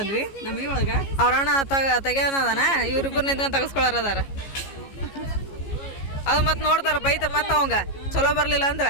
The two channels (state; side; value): late; right; 15 ms